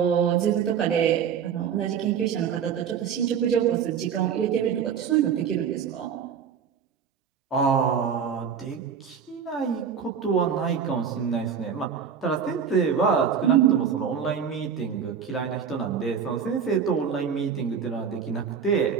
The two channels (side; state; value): left; quieter; 7.3 dB